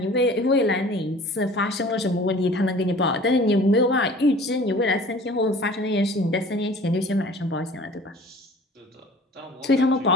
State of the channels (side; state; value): both; normal; correlation 0.46